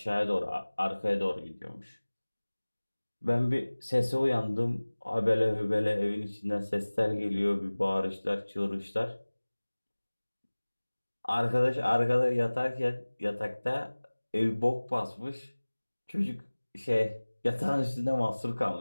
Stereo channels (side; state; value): both; inverted; correlation -1.00